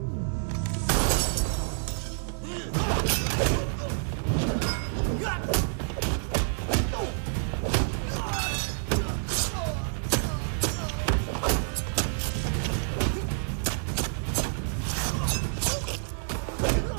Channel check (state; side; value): silent; left; 59 dB below the other